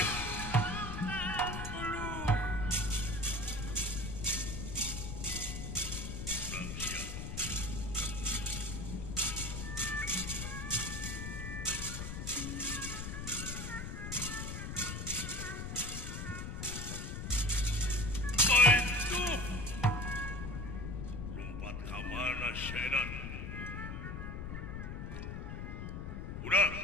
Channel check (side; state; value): left; noise; rumble, 5 dB below the sound